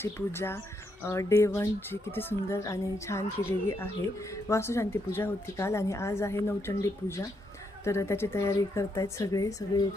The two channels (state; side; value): normal; both; correlation 0.78